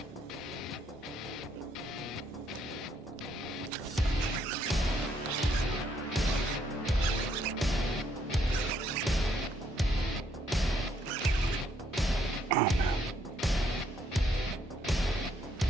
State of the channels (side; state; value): both; normal; correlation 0.71